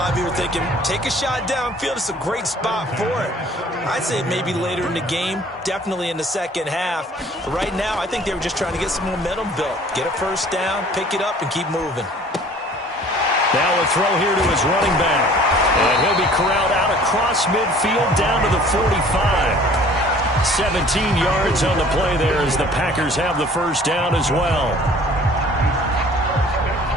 of you are thinking, take a shot downfield. It's a great spot for it. I'd say maybe later in the game, definitely in the second half. But right now, I think they were just trying to get some momentum built. Get a first down, pick it up, and keep moving. Now a throw here to his running back. And he'll be corralled out across midfield down to the 45. 17 yards on the play there as the Packers have the first down as well.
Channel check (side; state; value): both; normal; correlation 0.51